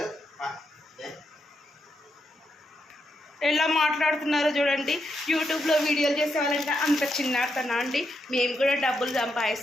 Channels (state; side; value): normal; both; correlation 0.82